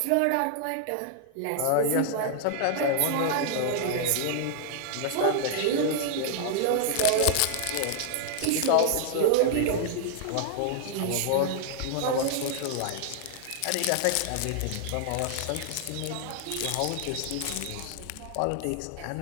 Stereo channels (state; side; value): different; both; correlation -0.01